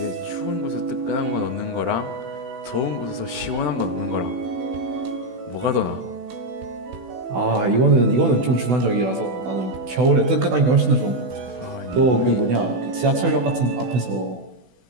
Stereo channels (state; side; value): late; left; 16 ms